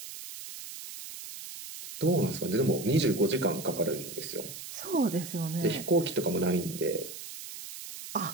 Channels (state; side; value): noise; right; hiss, 11 dB below the sound